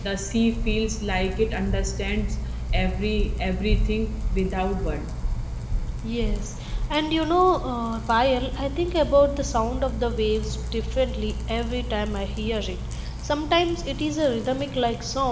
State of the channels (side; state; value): both; identical; correlation 1.00